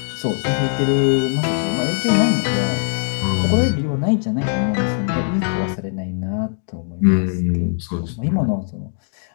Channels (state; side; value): silent; right; digital silence